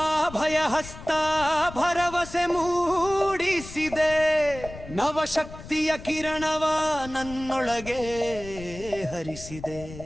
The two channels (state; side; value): noise; left; rumble, 14 dB below the sound